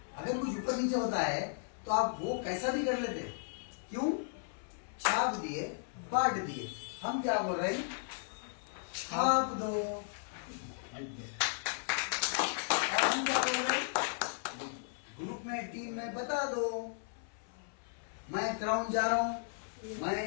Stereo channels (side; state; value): right; silent; 54 dB below the other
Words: अगर कुछ ऊपर नीचे होता है तो आप वो कैसा भी कर लेते। क्यों? छाप दिए, बांट दिए। हम क्या बोल रहे हैं? छाप दो। और हम क्या बोल रहे हैं? ग्रुप में, टीम में बता दो, मैं क्राउन जा रहा हूं,